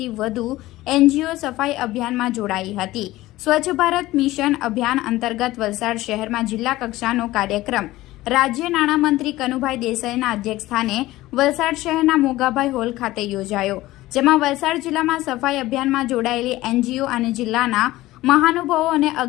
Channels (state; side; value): quieter; right; 17.2 dB